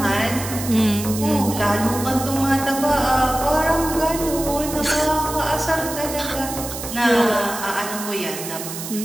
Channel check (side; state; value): right; noise; hiss, 8 dB below the sound